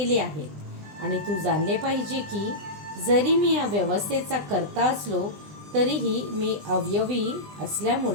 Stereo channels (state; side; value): late; left; 20 ms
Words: आहेत आणि तू जाणले पाहिजे की जरी मी या व्यवस्थेचा कर्ता असलो तरीही मी अवयवी